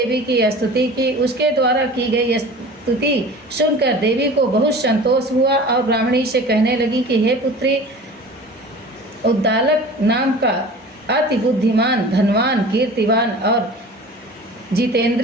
की स्तुति की। उसके द्वारा की गई स्तुति सुनकर देवी को बहुत संतोष हुआ और ब्राह्मणी से कहने लगी कि हे पुत्री, उद्दालक नाम का अति बुद्धिमान, धनवान, कीर्तिवान और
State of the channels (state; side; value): normal; both; correlation 0.40